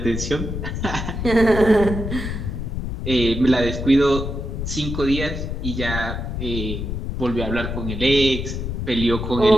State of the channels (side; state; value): left; noise; rumble, 4 dB below the sound